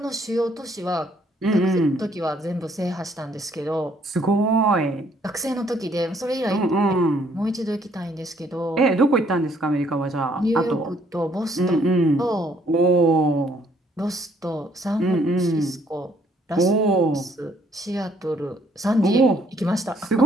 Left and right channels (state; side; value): normal; both; correlation 0.66